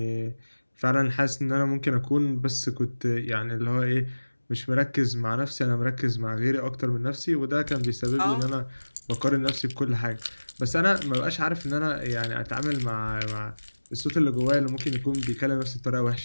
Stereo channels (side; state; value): both; inverted; correlation -1.00